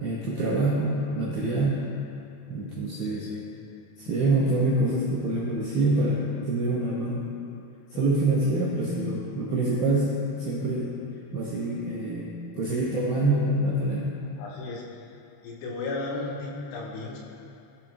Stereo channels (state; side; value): late; right; 28 ms